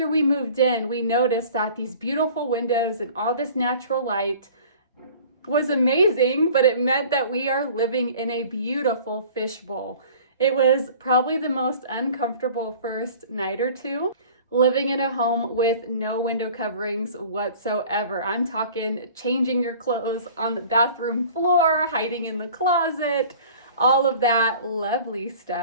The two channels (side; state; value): both; inverted; correlation -0.46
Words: we moved in, we noticed that these beautiful windows and all this natural light was amazing, but it meant that we are living in a beautiful fishbowl. It was probably the most uncomfortable first night or two, living in a home with no window coverings whatsoever. I'm talking changing your clothes on the bathroom floor, hiding in the closet, all of that lovely